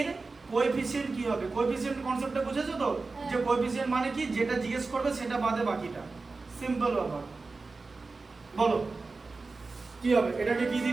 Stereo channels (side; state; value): left; quieter; 3.9 dB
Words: কোএফিসিয়েন্ট কি হবে? কোএফিসিয়েন্ট কনসেপ্টটা বুঝেছো তো, যে কোএফিসিয়েন্ট মানে কি, যেটা জিজ্ঞেস করবে সেটা বাদে বাকিটা। সিম্পল ব্যাপার, বলো কি হবে? এটাকে কি